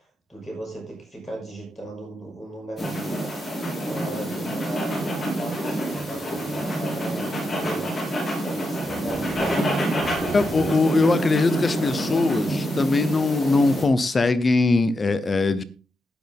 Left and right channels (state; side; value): normal; both; correlation 0.86